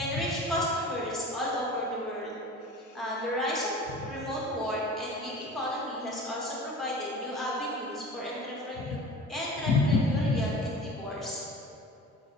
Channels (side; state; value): both; normal; correlation 0.37